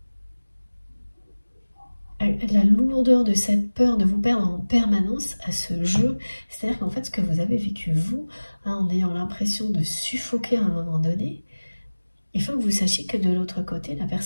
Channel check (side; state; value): both; inverted; correlation -1.00